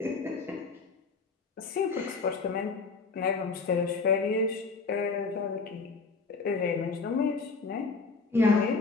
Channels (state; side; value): quieter; right; 4.4 dB